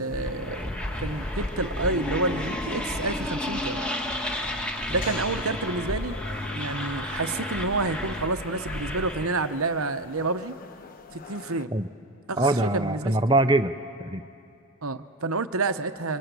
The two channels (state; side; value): normal; both; correlation 0.19